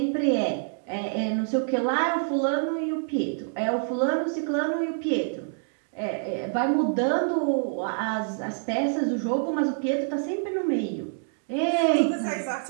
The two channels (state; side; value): silent; left; digital silence